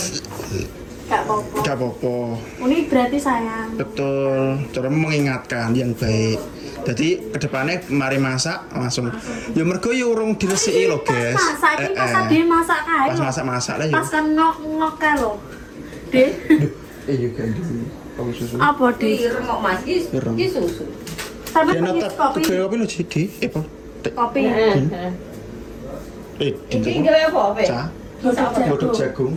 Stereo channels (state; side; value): identical; both; correlation 1.00